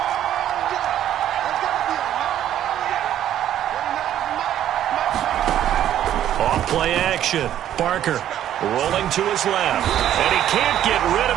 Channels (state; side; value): quieter; left; 11.4 dB